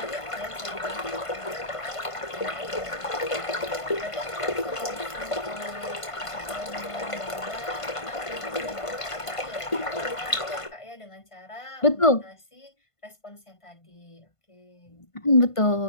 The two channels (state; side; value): late; right; 1.5 ms